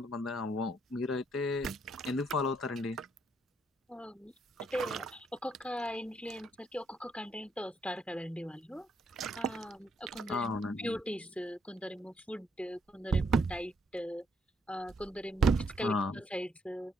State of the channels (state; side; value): normal; both; correlation 0.73